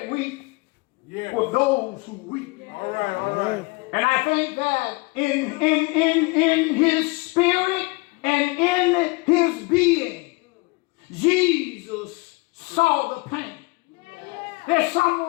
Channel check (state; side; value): quieter; right; 25.9 dB